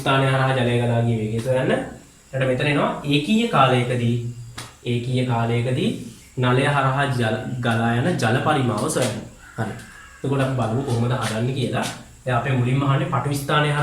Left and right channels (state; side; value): identical; both; correlation 1.00